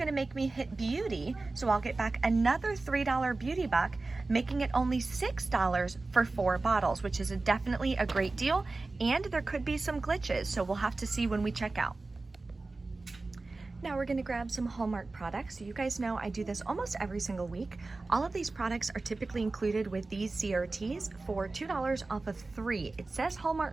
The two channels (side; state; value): left; quieter; 3.4 dB